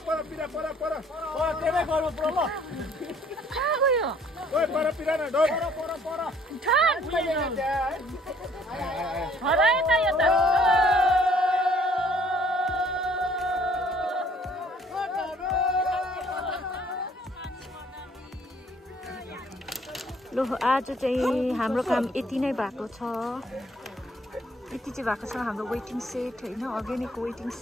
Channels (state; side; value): normal; both; correlation 0.60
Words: पर पिरा पर ओ त्यसै गर्नु पर्यो ल कहाँ गयो ओइ पर पिरा न डोर पर ठन हरा यता यता लो आज चाहिँ हाम्रो काम यति नै भएको छ यति चाहिँ भएको छ हाम्रो वेटिङ सेट होइन अर्ग्यानिक वेटिङ